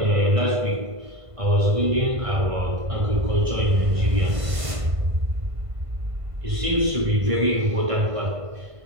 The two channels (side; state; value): left; late; 1.5 ms